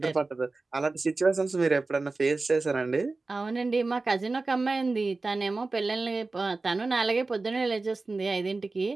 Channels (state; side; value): quieter; left; 3.6 dB